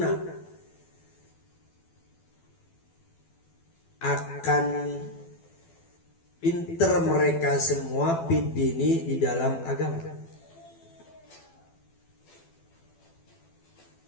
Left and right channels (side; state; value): right; late; 12 ms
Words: akan pinter mereka semua bidini di dalam agama.